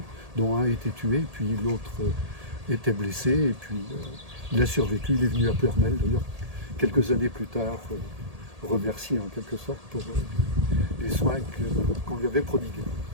dont un a été tué, puis l'autre était blessé, et puis il a survécu, il est venu à Pleuhermel d'ailleurs, quelques années plus tard, remercier en quelque sorte pour les soins qu'on lui avait prodigués.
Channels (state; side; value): late; left; 1.8 ms